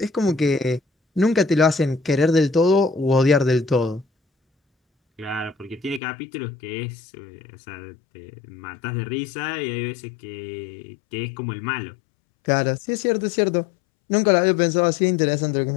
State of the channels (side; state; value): right; drops out; at 6.0 s